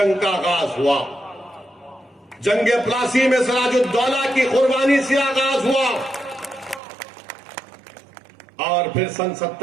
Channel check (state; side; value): drops out; left; at 6.8 s